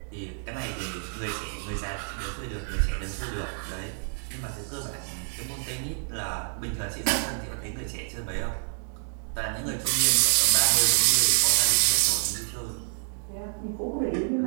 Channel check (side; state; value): left; silent; 59 dB below the other